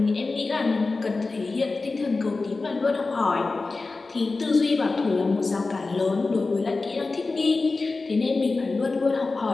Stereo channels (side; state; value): right; quieter; 3.7 dB